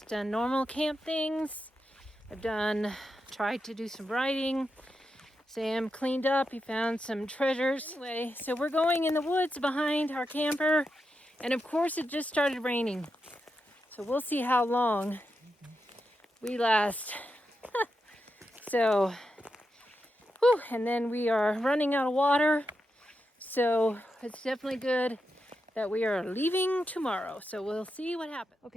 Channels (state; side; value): normal; both; correlation 0.87